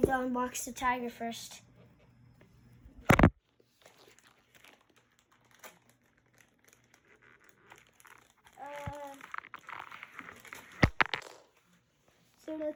to unbox the tiger first. So the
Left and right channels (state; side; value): identical; both; correlation 1.00